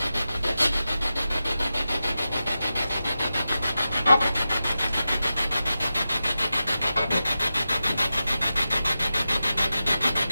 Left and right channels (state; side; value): inverted; both; correlation -0.92